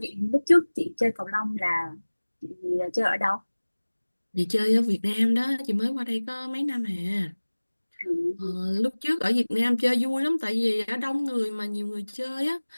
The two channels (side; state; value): both; inverted; correlation -1.00